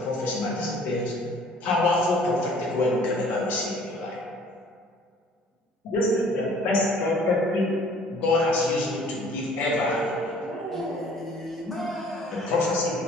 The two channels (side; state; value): both; normal; correlation 0.54